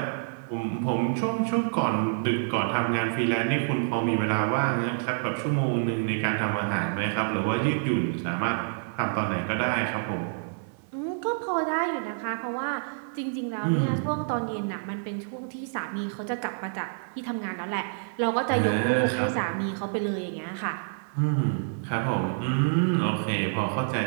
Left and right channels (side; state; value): left; silent; 60 dB below the other